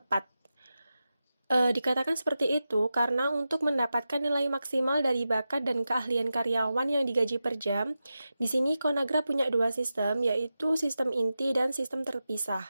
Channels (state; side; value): inverted; both; correlation -0.92